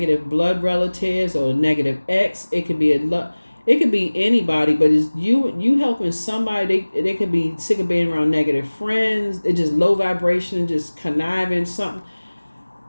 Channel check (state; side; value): inverted; both; correlation -1.00